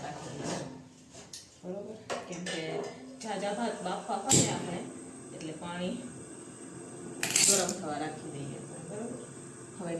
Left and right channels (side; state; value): both; identical; correlation 1.00